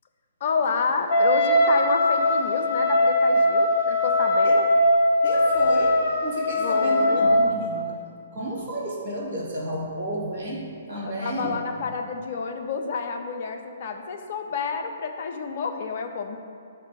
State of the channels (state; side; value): inverted; both; correlation -0.70